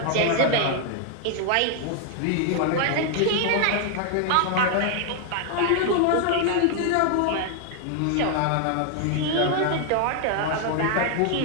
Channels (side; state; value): both; different; correlation 0.00